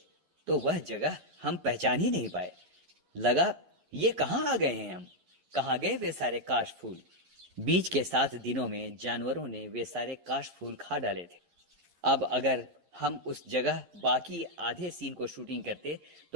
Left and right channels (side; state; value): left; late; 11 ms